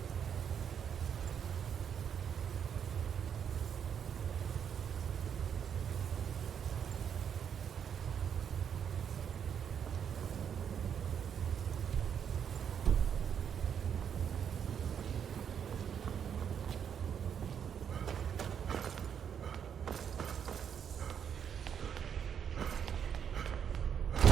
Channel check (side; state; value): left; quieter; 8.0 dB